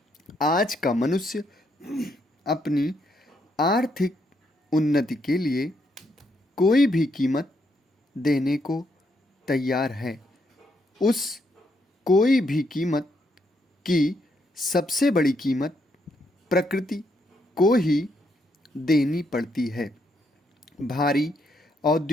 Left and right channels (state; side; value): normal; both; correlation 0.76